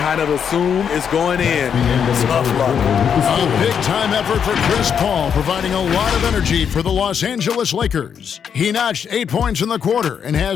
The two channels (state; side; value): quieter; right; 7.6 dB